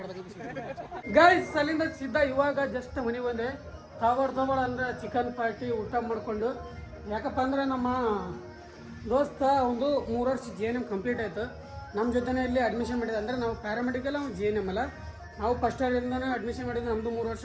ಗೈಸ್ ಅಲ್ಲಿಂದ ಸಿದ್ಧ ಇವಾಗ ಜಸ್ಟ್ ಮನೆ ಬಂದೆ. ತಗೊಳ್ ಅಂದ್ರೆ ಚಿಕನ್ ಪಾರ್ಟಿ ಊಟ ಮಾಡ್ಕೊಂಡು. ಯಾಕಪ್ಪ ಅಂದ್ರೆ ನಮ್ಮ ದೋಸ್ತ ಒಂದು 3 ವರ್ಷ GNM ಕಂಪ್ಲೀಟ್ ಆಯಿತು. ನಮ್ಮ ಜೊತೆನೇ ಇಲ್ಲಿ ಅಡ್ಮಿಷನ್ ಮಾಡಿದೆ. ಅಂದರೆ ನಾವು ಪ್ಯಾರಾಮೆಡಿಕಲ್, ಅವ್ನು GNM ಅಲ್ಲ. ನಾವು ಫಸ್ಟ್ ಇಯರಿಂದನೇ ಅಡ್ಮಿಷನ್ ಮಾಡಿದ್ದು, ನಮ್ಮದು 3 ವರ್ಷ,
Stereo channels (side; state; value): both; identical; correlation 1.00